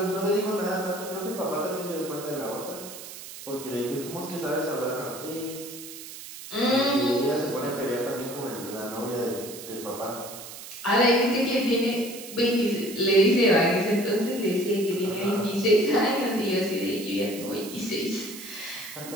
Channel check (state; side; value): noise; right; hiss, 13 dB below the sound